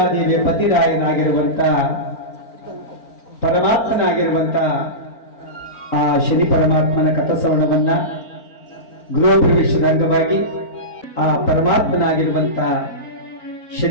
ಪತಿರಾಯನಾಗಿರುವಂತ ಪರಮಾತ್ಮನಾಗಿರುವಂತ ಆ ಶನಿ ಪರಮಾತ್ಮನ ಕಥಾಶ್ರವಣವನ್ನ ಗೃಹ ಪ್ರವೇಶದ ಅಂಗವಾಗಿ ಆ ಪರಮಾತ್ಮನಾಗಿರುವಂತ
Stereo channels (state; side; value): late; right; 4.4 ms